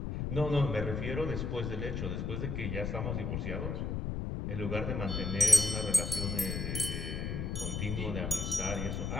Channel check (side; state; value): left; noise; rumble, 2 dB below the sound